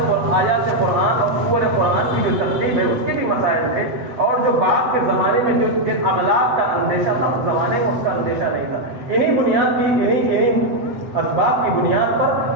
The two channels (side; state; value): left; late; 8.0 ms